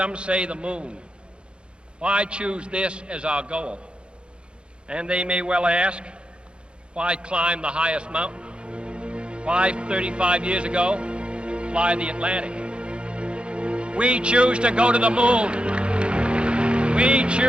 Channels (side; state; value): left; late; 0.056 ms